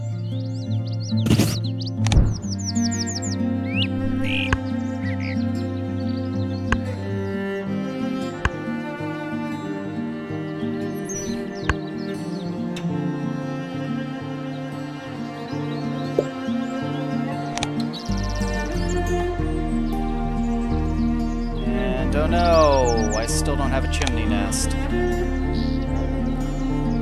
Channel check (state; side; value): identical; both; correlation 1.00